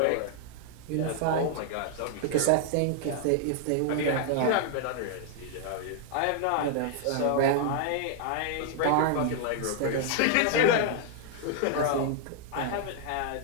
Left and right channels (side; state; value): both; different; correlation 0.00